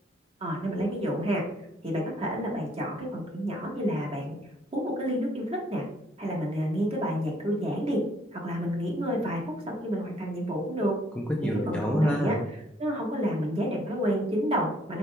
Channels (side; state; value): both; normal; correlation 0.65